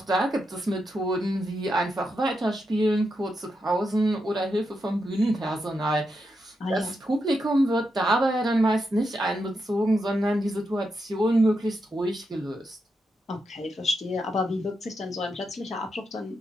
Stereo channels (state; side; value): normal; both; correlation 0.85